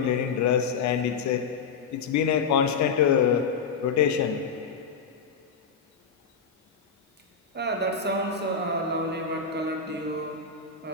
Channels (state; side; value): quieter; right; 5.5 dB